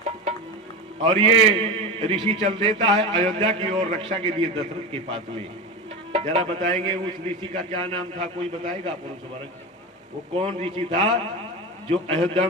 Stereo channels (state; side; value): normal; both; correlation 0.22